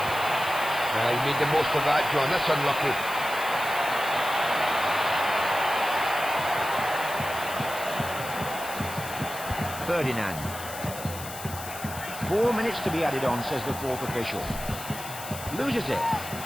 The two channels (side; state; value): left; noise; hiss, 11 dB below the sound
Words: He made the most of that, John. That's unlucky. Ferdinand. 4 minutes to be added on, says the fourth official. Loses it.